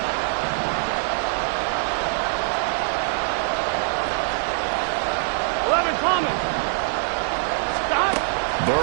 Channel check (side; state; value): left; silent; digital silence